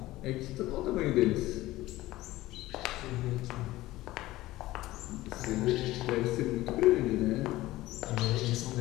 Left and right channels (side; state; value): right; quieter; 17.2 dB